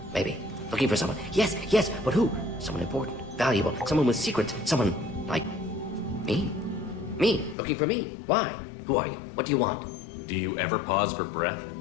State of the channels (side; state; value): right; drops out; at 7.6 s